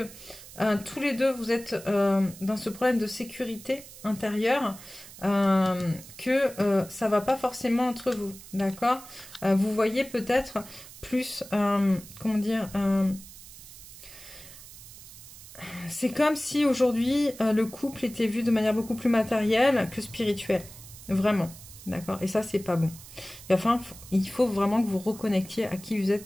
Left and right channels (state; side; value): noise; right; hiss, 17 dB below the sound